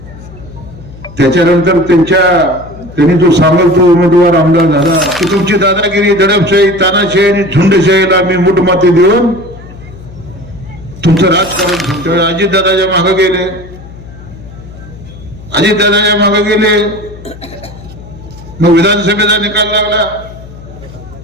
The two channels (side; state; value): left; noise; hum, 17 dB below the sound